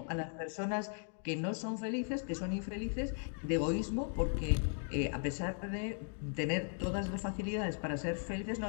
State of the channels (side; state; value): right; silent; 53 dB below the other